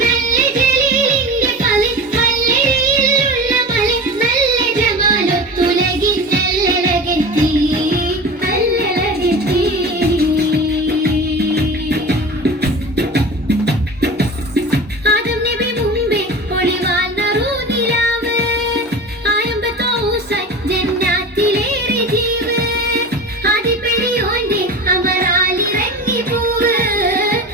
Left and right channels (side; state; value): both; normal; correlation 0.31